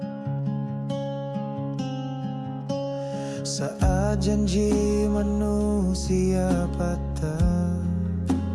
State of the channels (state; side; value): identical; both; correlation 1.00